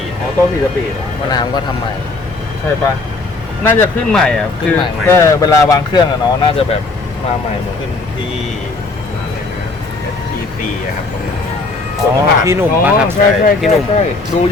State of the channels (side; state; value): right; quieter; 3.5 dB